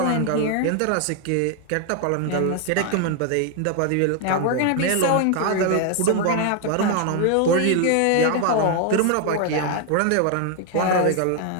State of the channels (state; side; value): different; both; correlation 0.00